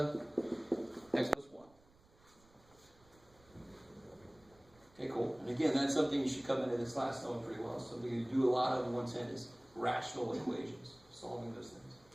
x plus 1. Okay, cool. And again, that's something you should come into this class knowing pretty well. Something you do a lot of in 110 is rational equations, solving those things.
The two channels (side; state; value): right; noise; rumble, 29 dB below the sound